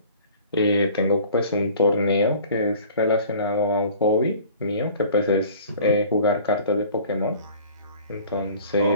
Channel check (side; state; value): both; inverted; correlation -0.48